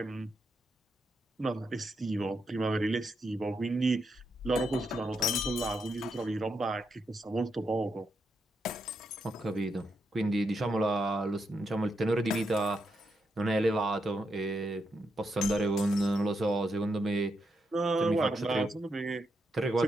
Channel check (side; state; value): both; normal; correlation 0.82